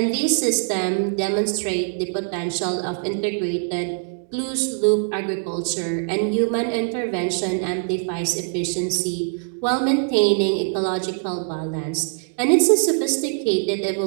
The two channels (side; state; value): left; silent; digital silence